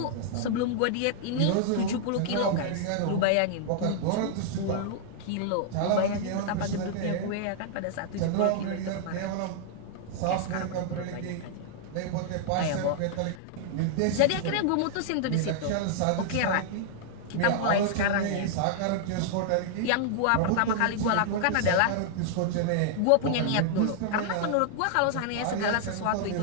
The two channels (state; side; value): different; both; correlation -0.01